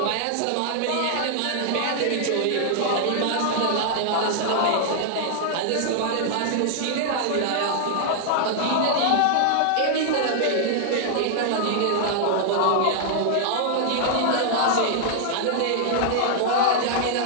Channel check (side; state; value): both; different; correlation -0.01